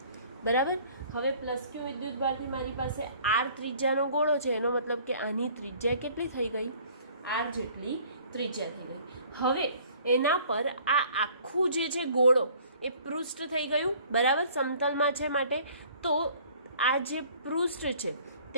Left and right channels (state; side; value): inverted; both; correlation -0.54